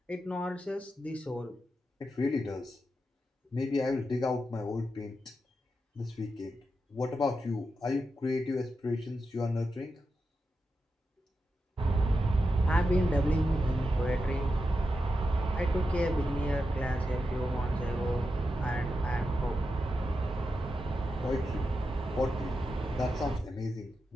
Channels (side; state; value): both; normal; correlation 0.88